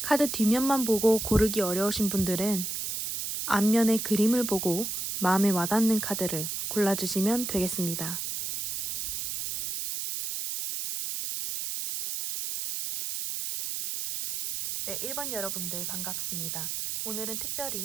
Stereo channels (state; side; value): noise; right; hiss, 3 dB below the sound